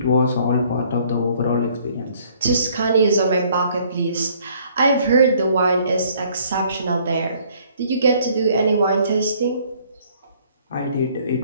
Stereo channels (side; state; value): both; inverted; correlation -0.61